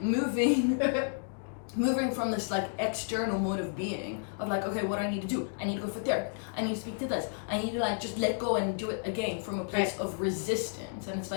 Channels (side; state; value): right; silent; digital silence